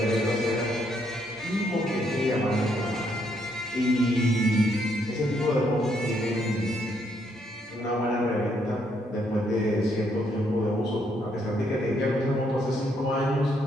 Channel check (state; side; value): normal; both; correlation 0.73